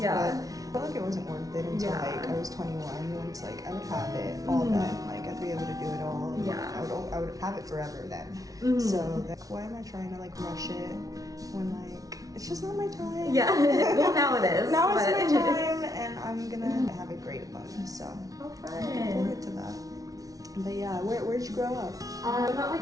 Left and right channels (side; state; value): left; late; 0.18 ms